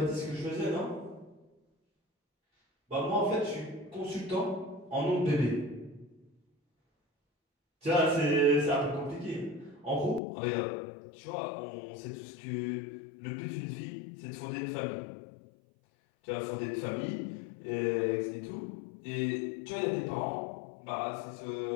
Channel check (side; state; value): right; drops out; at 10.2 s